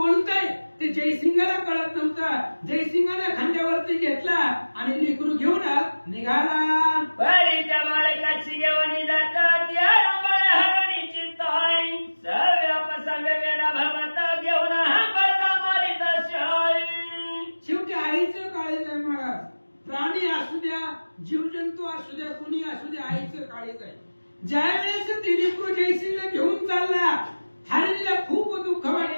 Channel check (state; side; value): inverted; both; correlation -1.00